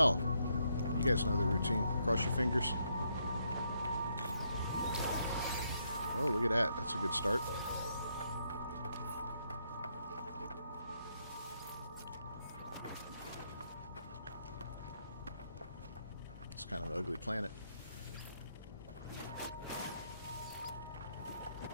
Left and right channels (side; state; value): both; inverted; correlation -0.76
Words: you guys know the routine. Cross your fingers. Oh, look at that. That's a good start. It's kind of an ugly planet.